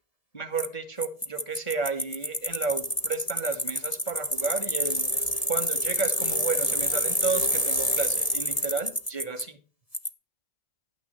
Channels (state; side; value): late; right; 1.7 ms